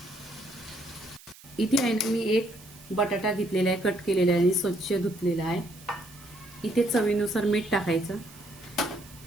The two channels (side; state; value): right; noise; hiss, 21 dB below the sound